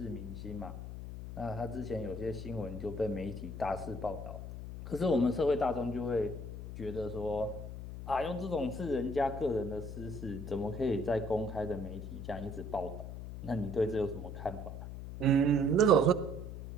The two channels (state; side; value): noise; left; hum, 8 dB below the sound